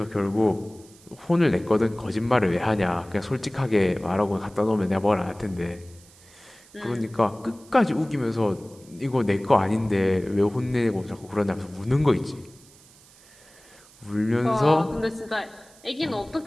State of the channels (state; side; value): noise; right; hiss, 25 dB below the sound